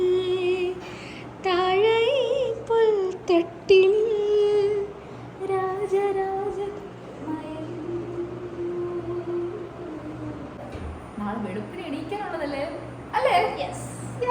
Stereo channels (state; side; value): identical; both; correlation 1.00